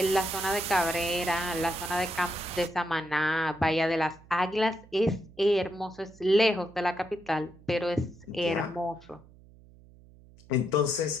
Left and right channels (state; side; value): noise; right; hum, 24 dB below the sound